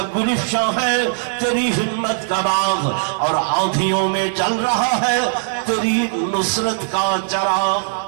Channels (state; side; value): silent; left; 66 dB below the other